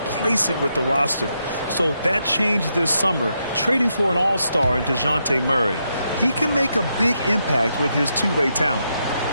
with the roster. So that changed this summer, trading for an all-star in DeJounte Murray. He can make a big impact with his two-way talent.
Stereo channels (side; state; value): both; inverted; correlation -0.81